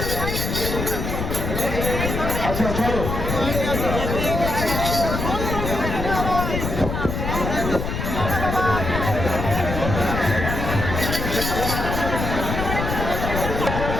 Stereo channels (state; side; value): noise; left; rumble, 3 dB below the sound